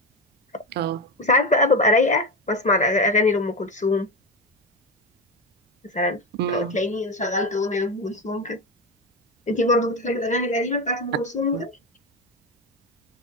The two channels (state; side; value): normal; both; correlation 0.18